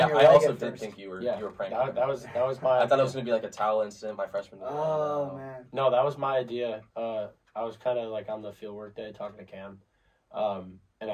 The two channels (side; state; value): both; identical; correlation 1.00